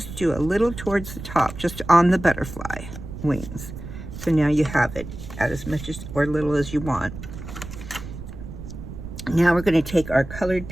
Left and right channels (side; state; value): right; noise; rumble, 11 dB below the sound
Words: do a little towards the top, just on the butterfly wings. So now you have it at as much as or little as you want. Now we're going to take our colored